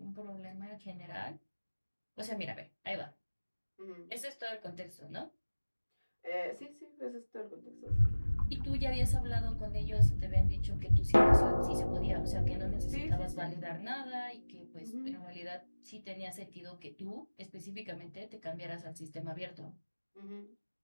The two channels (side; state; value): both; inverted; correlation -1.00